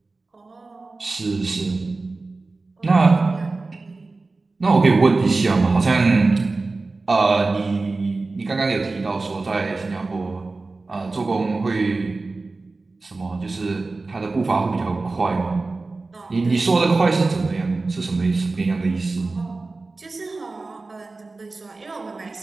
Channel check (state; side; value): quieter; left; 3.6 dB